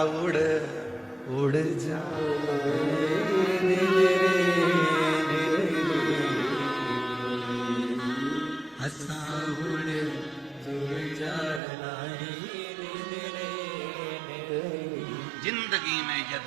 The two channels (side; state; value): left; drops out; at 11.6 s